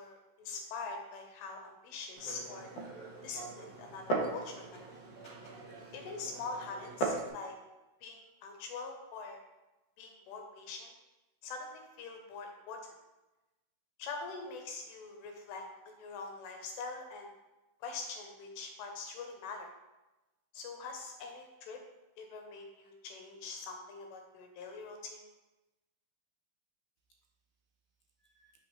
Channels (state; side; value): late; right; 16 ms